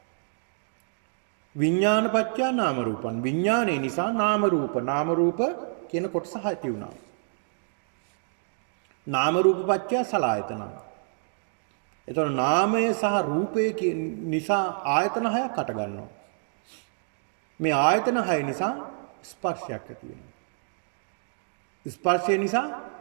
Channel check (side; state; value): left; silent; digital silence